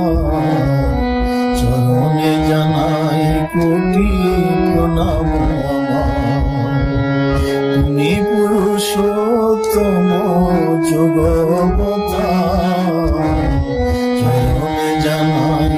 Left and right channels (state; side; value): identical; both; correlation 1.00